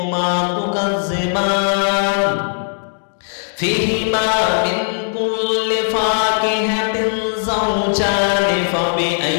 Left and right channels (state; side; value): silent; right; digital silence